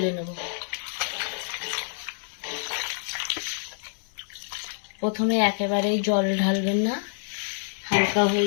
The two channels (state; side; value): silent; right; 60 dB below the other